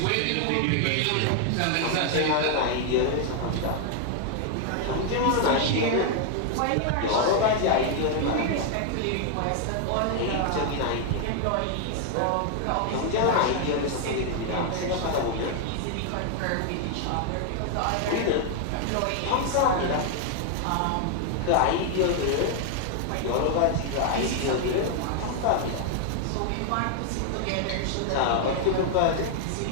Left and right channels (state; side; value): different; both; correlation 0.00